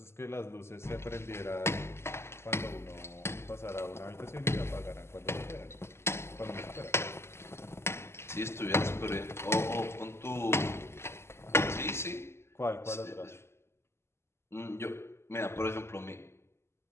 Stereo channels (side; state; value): right; late; 0.12 ms